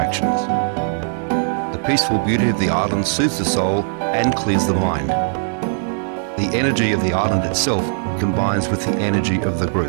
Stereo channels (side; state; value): left; silent; 56 dB below the other